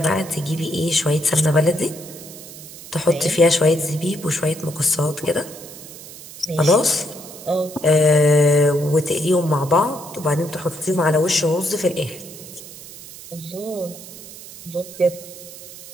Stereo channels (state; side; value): noise; right; hiss, 15 dB below the sound